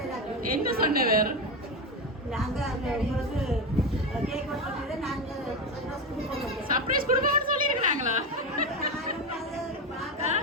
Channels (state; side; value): normal; both; correlation 0.15